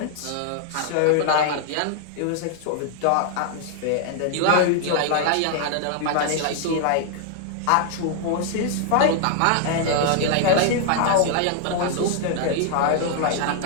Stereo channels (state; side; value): different; both; correlation -0.01